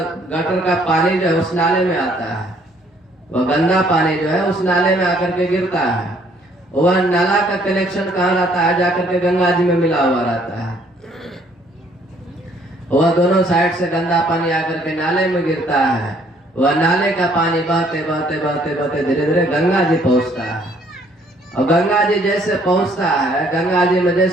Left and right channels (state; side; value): normal; both; correlation 0.63